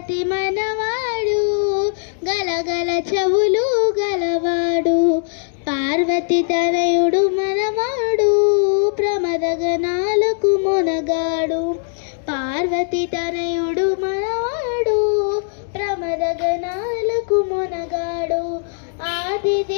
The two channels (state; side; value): silent; right; 66 dB below the other